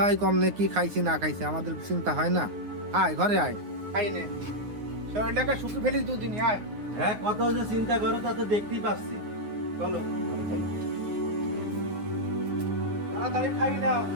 কম নে কি খাইছি না খাইছি আমাদের চিন্তা হয় না? আয় ঘরে আয়, খাই নে, শরীরটাকে শুকিয়ে ফেলিস দুদিন। আয়। হ্যাঁ, কত যে চিন্তা করো তা তো দেখতেই পাচ্ছি। চলো চলো। তাড়াতাড়ি খাই নাও।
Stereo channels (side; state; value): left; late; 9.6 ms